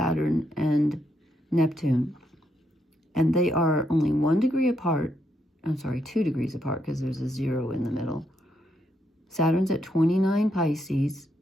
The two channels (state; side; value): normal; both; correlation 0.78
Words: and Neptune. And they are only 1 degree apart. I'm sorry, 2 degrees apart because there's a 0 in the middle. Saturn's at 29 Pisces